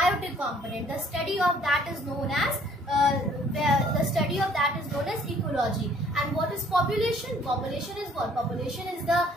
component. The study of that is known as ecology. And what is population? Population is what? Population is the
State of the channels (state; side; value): normal; both; correlation 0.59